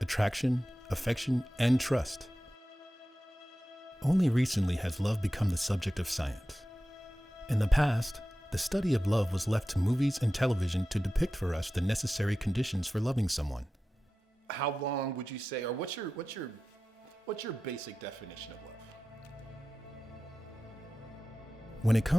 attraction, affection, and trust. Only recently has love become the subject of science. In the past, the study of love was left to movies and television to depict for us the necessary conditions for loving someone. How long would you say, or what's your basic definition of love? When it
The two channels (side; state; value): both; normal; correlation 0.94